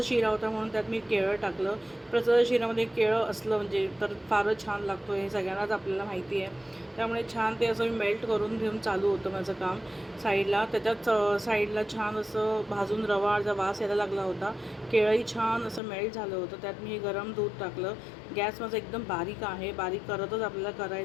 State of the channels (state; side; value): drops out; right; at 15.8 s